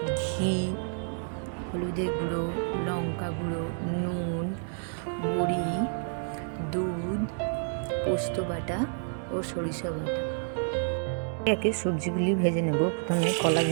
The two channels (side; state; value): left; silent; digital silence